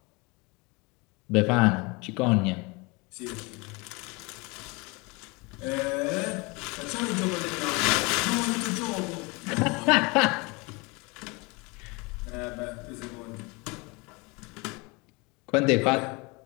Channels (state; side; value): quieter; right; 27.2 dB